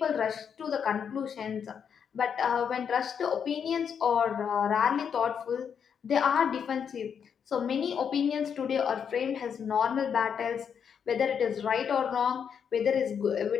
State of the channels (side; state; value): right; quieter; 7.4 dB